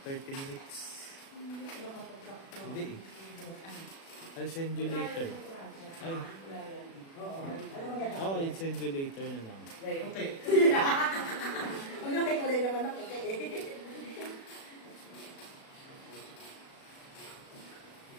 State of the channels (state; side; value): late; right; 36 ms